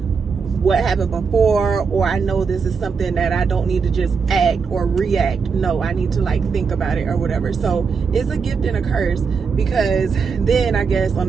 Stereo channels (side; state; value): left; quieter; 5.5 dB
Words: what happened before, or I know this is something that I don't need to just act or react. No, I need to like think about it or whatever. So it's a gift and a curse, because then I guess on